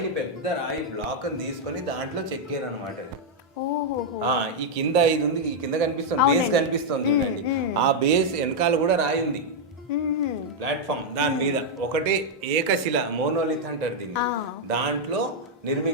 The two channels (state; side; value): normal; both; correlation -0.02